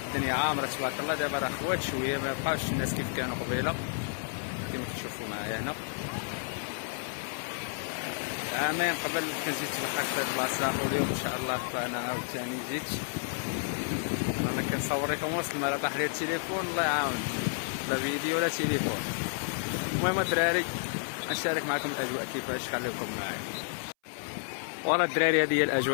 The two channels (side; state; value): right; silent; 57 dB below the other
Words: الدنيا عامره تبارك الله، دابا راه خوات شويه، ما بقاوش الناس كيف كانوا قبيله كما كتشوفوا معايا هنا. عامين قبل كنت جيت تبحر في هذه البلاصه، واليوم ان شاء الله فانا عاوتاني جيت. انا كنصور لكم وسط الماء، طاح لي التليفون الله يعاون، لا فيديو ولا تليفون. المهم الدراري نشارك معكم الاجواء كيفاش، خليكم معايا. ورا الدراري هذه هي